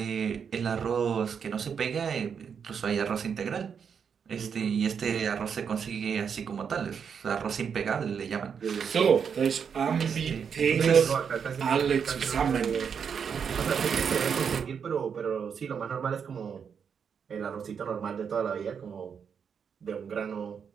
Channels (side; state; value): left; quieter; 6.9 dB